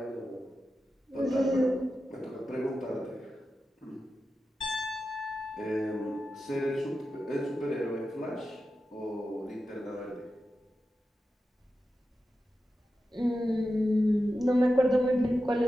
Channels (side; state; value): both; normal; correlation 0.91